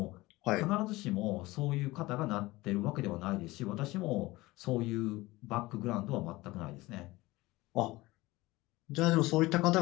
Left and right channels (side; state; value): right; quieter; 20.0 dB